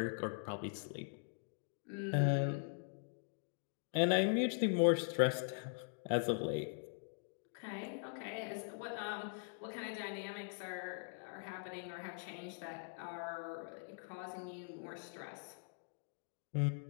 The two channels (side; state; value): right; silent; digital silence